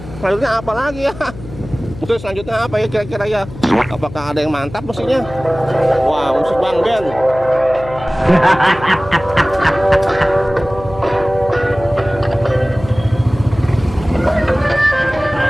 selanjutnya apa lagi ya? Musik selanjutnya apa ya kira-kira ya? Apakah ada yang mantap musiknya? Wah, musik Bang Ben.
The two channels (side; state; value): left; noise; hum, 14 dB below the sound